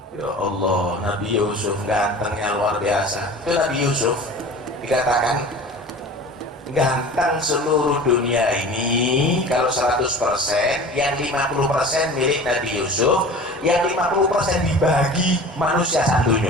Ya Allah, Nabi Yusuf gantengnya luar biasa. Itu Nabi Yusuf dikatakan ganteng seluruh dunia ini. Kalau 100%, yang 50% milik Nabi Yusuf, yang 50% dibagi manusia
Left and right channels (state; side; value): normal; both; correlation 0.39